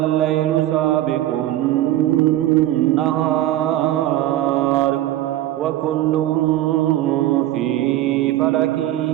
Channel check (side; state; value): left; quieter; 14.3 dB